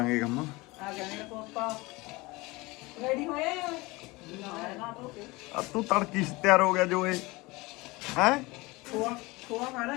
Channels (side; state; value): right; quieter; 22.8 dB